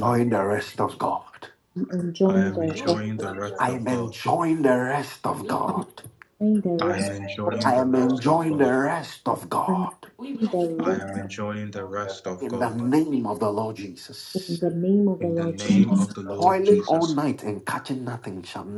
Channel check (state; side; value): identical; both; correlation 1.00